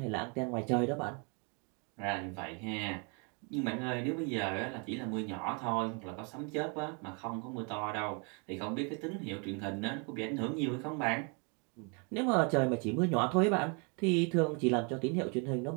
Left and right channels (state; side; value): quieter; left; 35.1 dB